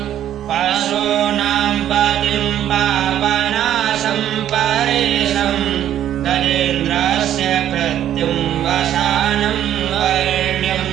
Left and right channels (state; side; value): quieter; left; 11.1 dB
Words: पशूनां पतिं पावनाशं परेशं गजेन्द्रस्य कृत्युं वसानं वैण्यं